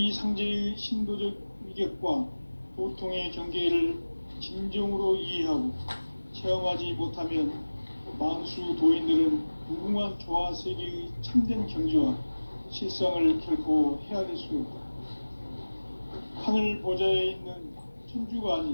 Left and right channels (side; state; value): both; inverted; correlation -1.00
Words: 상제의 신도적 위격과 도통의 경계를 진정으로 이해하고 체험하지 못하면 만수 도인들은 무궁한 조화 세계의 참된 경지와 실상을 결코 헤아릴 수 없다. 하늘 보좌에 있는 천주가